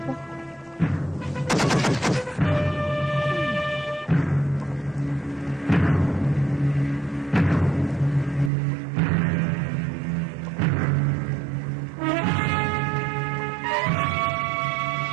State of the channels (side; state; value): left; drops out; at 8.5 s